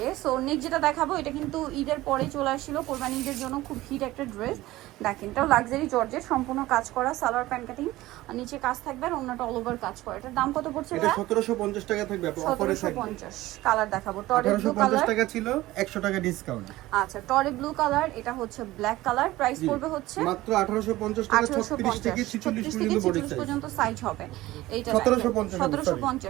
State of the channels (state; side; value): quieter; left; 17.3 dB